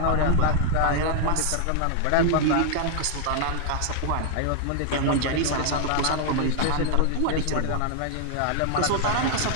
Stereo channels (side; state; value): both; different; correlation 0.00